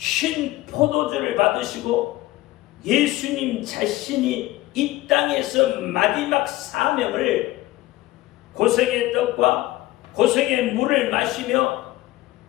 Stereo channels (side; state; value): right; quieter; 17.4 dB